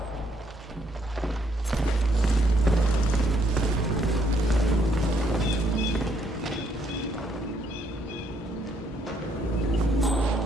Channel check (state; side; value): normal; both; correlation 0.71